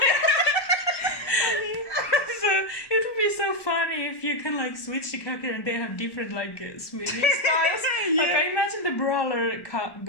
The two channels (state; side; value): late; right; 1.1 ms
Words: So it would be so funny if you can like switch the character and they have different like swimming styles. Like I imagine the brawler